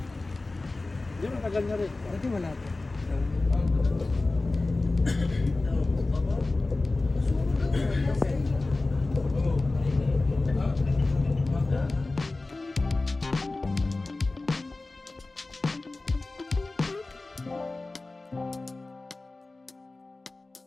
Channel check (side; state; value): right; quieter; 3.2 dB